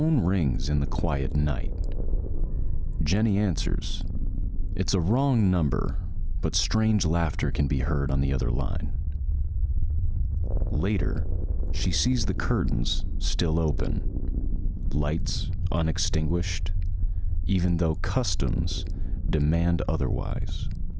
rings in the quiet night. Jenny answers. It's a wrong number, but strange laughter can be heard on the other line. Later, she sees the curtains still open, lights unextinguished, even though customs demand otherwise.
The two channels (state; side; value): identical; both; correlation 1.00